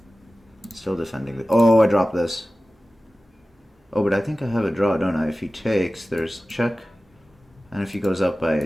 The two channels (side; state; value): both; normal; correlation 0.96